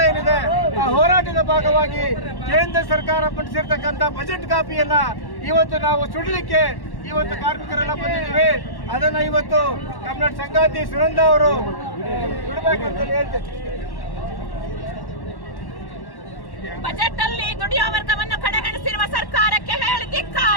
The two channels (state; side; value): late; right; 1.1 ms